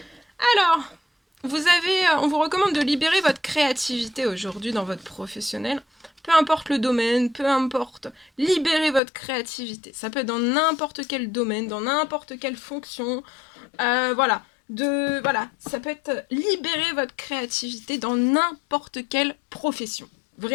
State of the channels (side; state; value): right; drops out; at 9.0 s